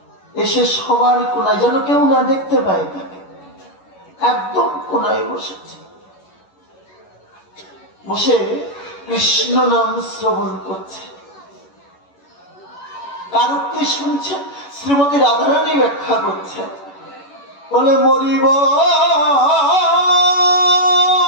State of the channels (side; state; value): right; late; 11 ms